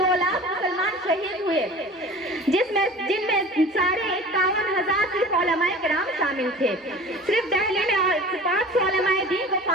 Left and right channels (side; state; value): both; normal; correlation 0.40